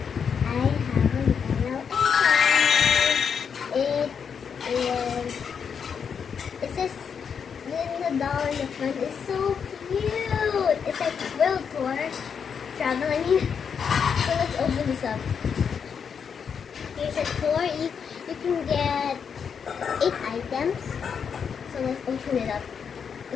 I have an yellow account. It says $1 in the front. It's so cute. It's like world tour travel. I mean, so let's open this up. Here's a tour. You can get 8 items. So let's open it up.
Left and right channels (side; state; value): right; quieter; 6.8 dB